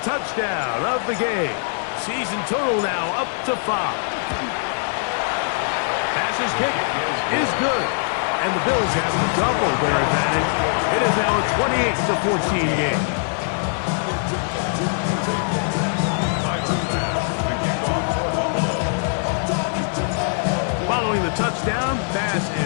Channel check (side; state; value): right; silent; 64 dB below the other